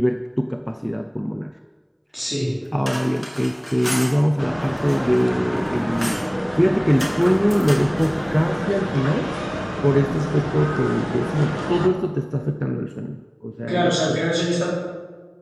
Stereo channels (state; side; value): identical; both; correlation 1.00